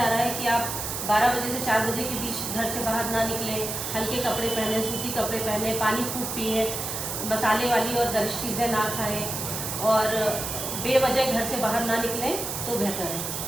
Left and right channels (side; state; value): right; noise; hiss, 4 dB below the sound